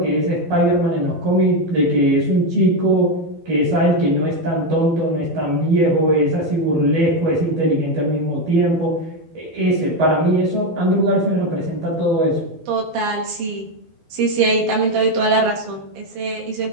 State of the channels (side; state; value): left; late; 12 ms